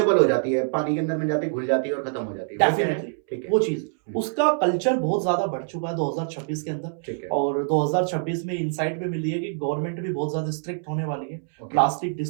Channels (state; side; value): silent; left; 62 dB below the other